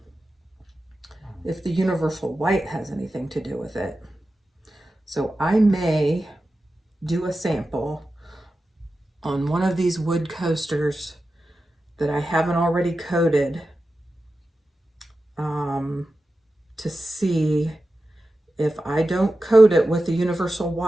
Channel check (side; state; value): both; normal; correlation 0.92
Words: if the universal white has anything to do with it. So I may do a sample on one of these wood coasters that I haven't already coated to see if I don't coat it with the universal